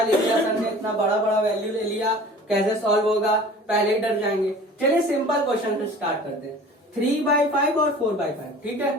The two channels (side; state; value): both; normal; correlation 0.44